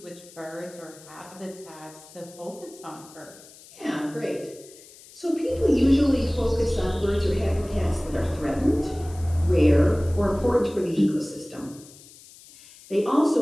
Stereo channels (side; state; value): left; noise; hiss, 21 dB below the sound